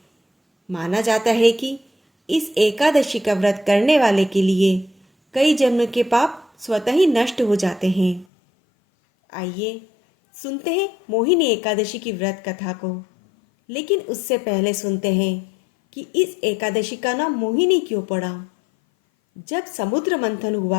माना जाता है कि इस एकादशी का व्रत करने वाले के लिए कई जन्म के पाप स्वतः ही नष्ट हो जाते हैं। आइए सुनते हैं मोहिनी एकादशी की व्रत कथा को। लेकिन उससे पहले सुनते हैं कि इस एकादशी का नाम मोहिनी क्यों पड़ा। जब समुद्र मंथन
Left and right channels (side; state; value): right; drops out; at 8.2 s